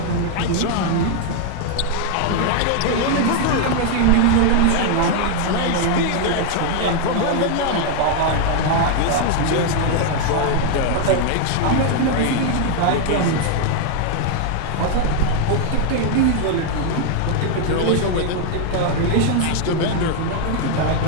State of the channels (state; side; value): different; both; correlation 0.00